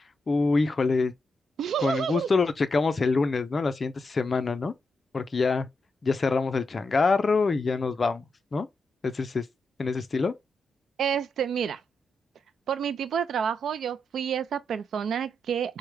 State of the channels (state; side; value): normal; both; correlation 0.84